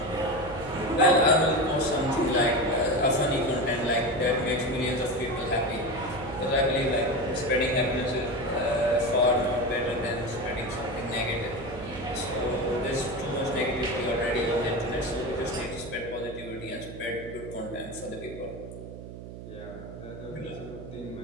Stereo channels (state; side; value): noise; right; hum, 12 dB below the sound